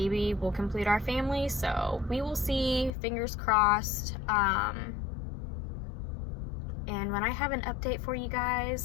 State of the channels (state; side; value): drops out; right; at 2.9 s